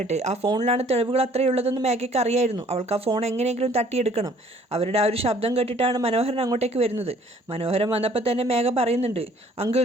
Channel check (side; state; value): both; normal; correlation 0.57